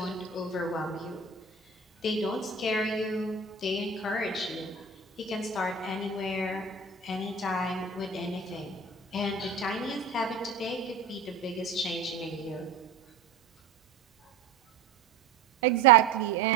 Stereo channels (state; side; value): quieter; left; 4.4 dB